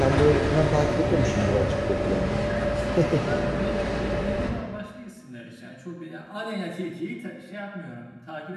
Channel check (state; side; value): identical; both; correlation 1.00